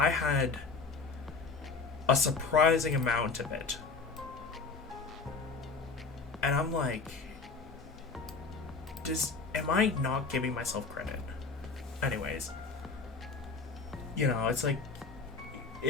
had a surprising amount of it. And I'm like, am I not giving myself credit? Anyways, you know, it's like,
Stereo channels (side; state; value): right; quieter; 4.5 dB